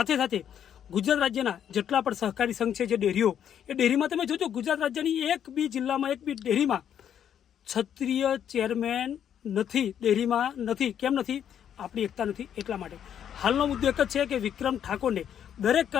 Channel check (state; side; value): quieter; right; 9.3 dB